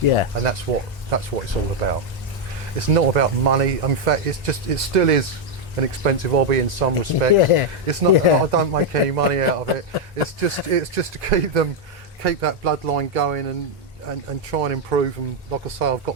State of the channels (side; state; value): both; normal; correlation 0.01